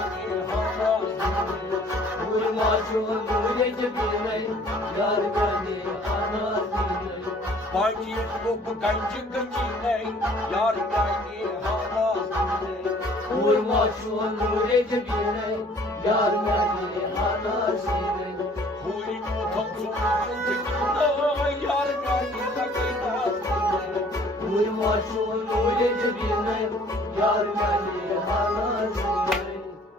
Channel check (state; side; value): normal; both; correlation 0.55